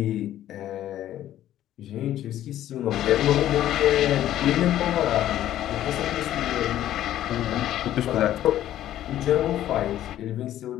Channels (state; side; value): quieter; right; 12.6 dB